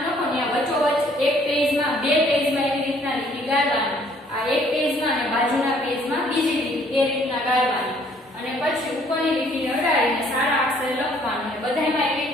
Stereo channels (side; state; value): both; normal; correlation 0.61